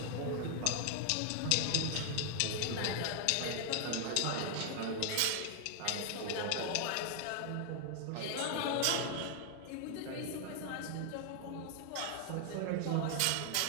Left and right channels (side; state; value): both; different; correlation 0.00